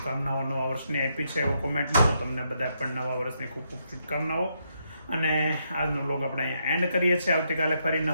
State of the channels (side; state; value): both; inverted; correlation -0.78